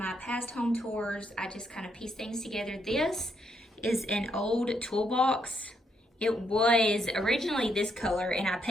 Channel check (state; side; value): normal; both; correlation 0.76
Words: past home tours, I just kind of piece things together. This is an old toolbox. It was originally this color and I